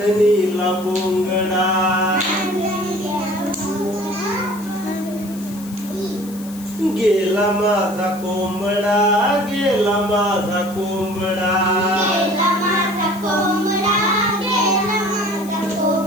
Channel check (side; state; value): left; noise; hiss, 18 dB below the sound